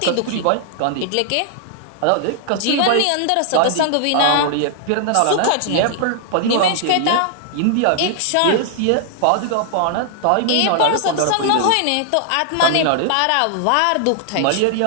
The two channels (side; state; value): both; different; correlation 0.00